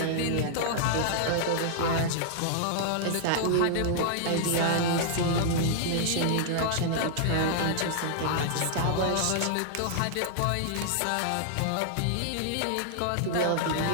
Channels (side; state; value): both; different; correlation -0.01